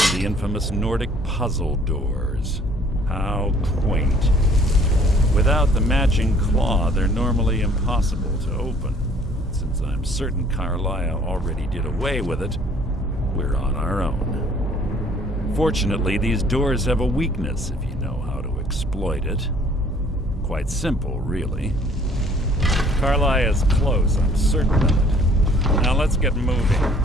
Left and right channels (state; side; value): normal; both; correlation 0.58